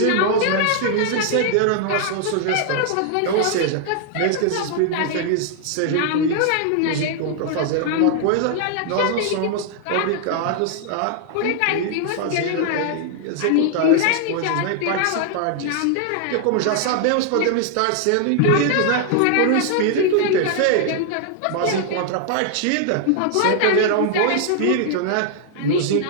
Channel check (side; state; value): both; different; correlation 0.00